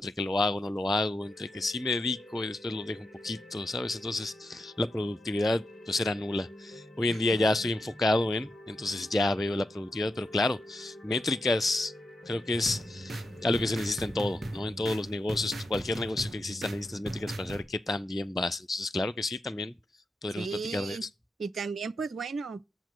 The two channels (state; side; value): normal; both; correlation 0.86